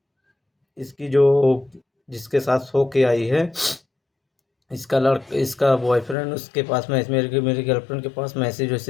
इसकी जो जिसके साथ सो के आई है, इसका बॉयफ्रेंड उसके पास में मेरी गर्लफ्रेंड के पास मैसेज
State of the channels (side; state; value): right; drops out; at 6.2 s